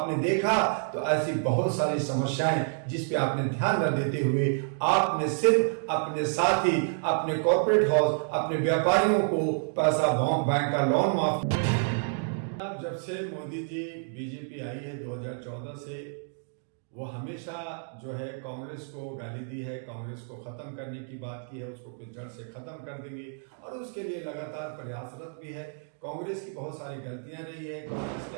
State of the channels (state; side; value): silent; left; digital silence